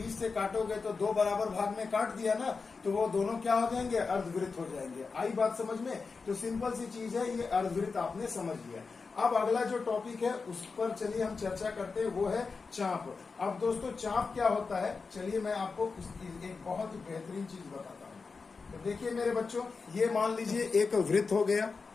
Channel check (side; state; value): right; quieter; 4.6 dB